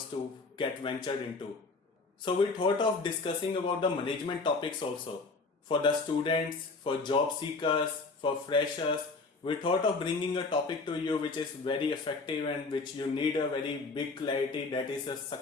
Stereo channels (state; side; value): quieter; right; 3.9 dB